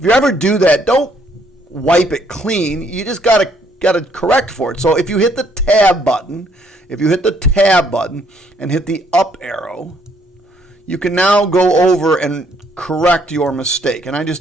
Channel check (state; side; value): normal; both; correlation 0.67